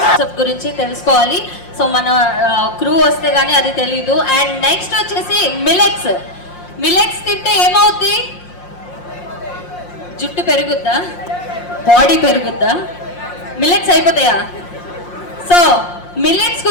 గురించి తెలుసుకోవాలి. సో మన క్రూ వస్తే గానీ అది తెలీదు. అండ్ నెక్స్ట్ వచ్చేసి మిలెట్స్. మిలెట్స్ తింటే ఏమవుద్ది? జుట్టు పెరుగుద్దా? బాడీ పెరుగుద్దా? మిలెట్స్ అయిపోతాయా? సో మిల్లెట్స్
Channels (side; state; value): right; late; 5.6 ms